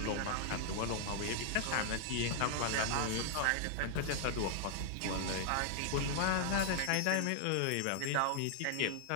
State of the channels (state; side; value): different; both; correlation 0.00